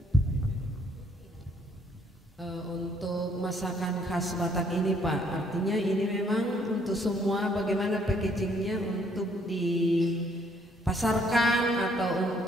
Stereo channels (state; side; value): normal; both; correlation 0.66